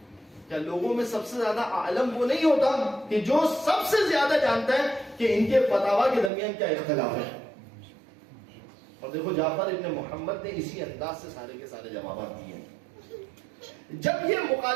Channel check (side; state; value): left; drops out; at 6.3 s